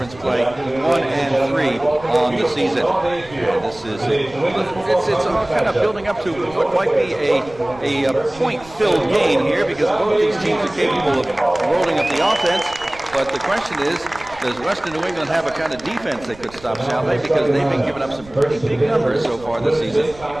play, 1-3 on the season. And this is it's all kind of building up to what might be a point-filled game here, because both these teams are capable of rolling up the offense. But the question is, does Western New England have a kind of defense that could stop Salve? Because they've been giving up some pretty big numbers so far this season,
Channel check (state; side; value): noise; right; rumble, 20 dB below the sound